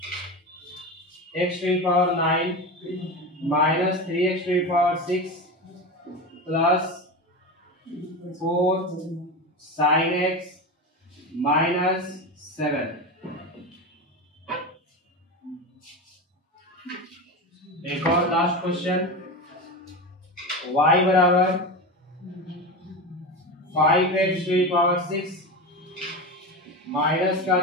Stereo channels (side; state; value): both; normal; correlation 0.22